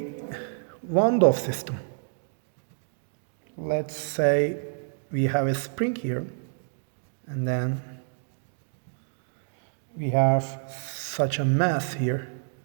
Van system. Let's say we have a spring here, and then we have such a mass here.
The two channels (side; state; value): left; silent; digital silence